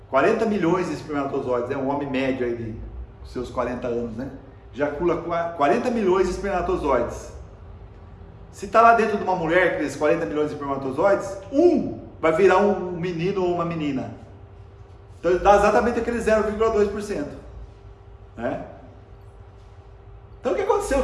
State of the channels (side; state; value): both; identical; correlation 1.00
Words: 40 milhões de espermatozoides, é um homem médio aí de seus 40 anos, né? Ejacula 40 milhões de espermatozoides. Se está lá dentro de uma mulher, aqueles 40 milhões de espermatozoides, vai virar um menino ou uma menina. Então dá exatamente aquele 0,2%. Né? Então o que aconteceu? Que